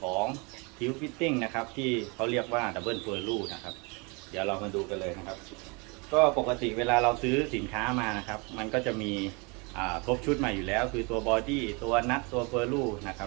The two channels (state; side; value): quieter; left; 30.2 dB